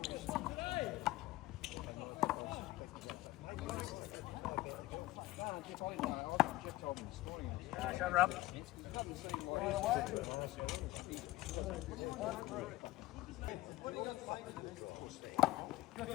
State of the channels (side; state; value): right; quieter; 17.7 dB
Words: Jeff told me this morning. Shut her up.